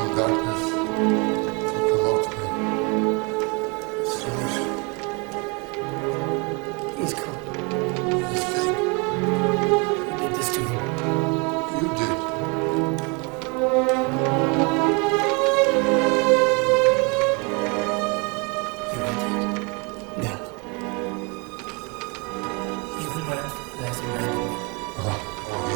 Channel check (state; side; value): quieter; left; 30.8 dB